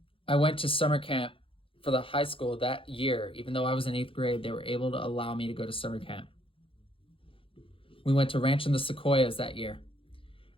I went to summer camp for the high school that year. Even though I was in 8th grade, they were able to allow me to go to summer camp. We went to Ranch in the Sequoias that year.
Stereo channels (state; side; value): late; right; 0.26 ms